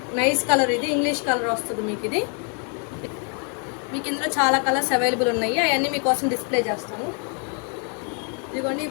నైస్ కలర్, ఇది ఇంగ్లీష్ కలర్ వస్తుంది మీకు. ఇది మీకు ఇందులో చాలా కలర్స్ అవైలబుల్ ఉన్నాయి, అవన్నీ మీకోసం డిస్ప్లే చేస్తాను. ఇదిగోండి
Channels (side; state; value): right; quieter; 39.9 dB